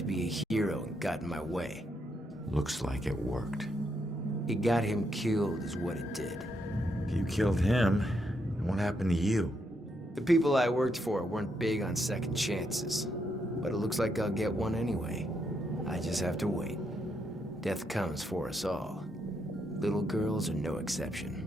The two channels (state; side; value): normal; both; correlation 0.78